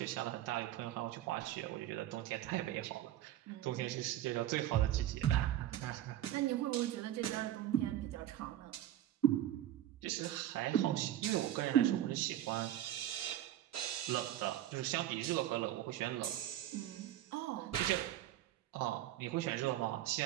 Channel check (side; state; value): left; quieter; 12.7 dB